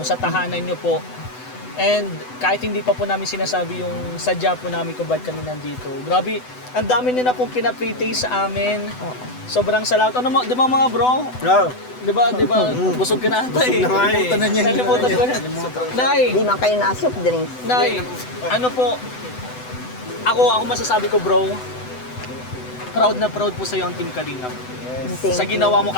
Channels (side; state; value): right; late; 8.0 ms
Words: sa tahanan nyo po. And kahit hindi pa po namin sinasabi yung sadya po namin kung bakit kami nandito. Grabe, ang dami nyo na pong pinapre-taste sa amin. Sobrang salamat. Ano mo, di ba mga bro? No. Di ba, busog ka na ata eh. Busog na nga eh. Kalimutan na niya. Kalimutan ko na. Nay, Hindi man kayo na-soft drinks. Nay, ano po, ako masasabi ko bro, proud na proud po sa'yo ang Team Kalingap. Thank Sa ginawa mo,